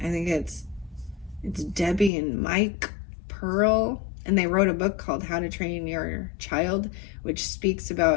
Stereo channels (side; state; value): right; drops out; at 2.1 s